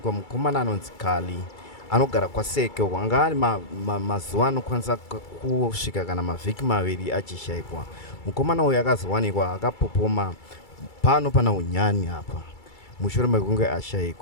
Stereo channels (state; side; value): late; right; 2.3 ms